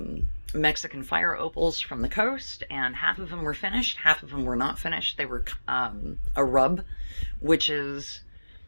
Mexican fire opals from the coast, and half of them were finished, half of them were not finished. They were a rub, which is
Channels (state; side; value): inverted; both; correlation -1.00